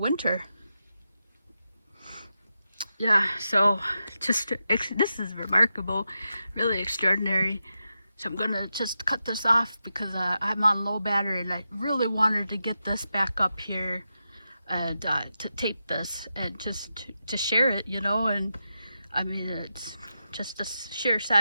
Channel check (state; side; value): inverted; both; correlation -0.88